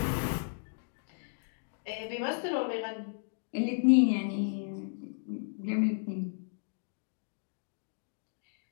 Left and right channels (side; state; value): right; silent; digital silence